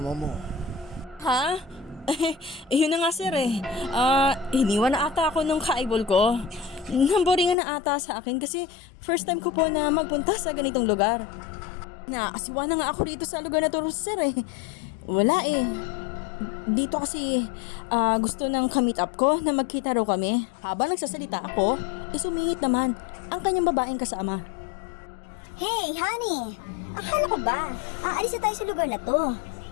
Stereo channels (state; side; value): drops out; right; at 7.6 s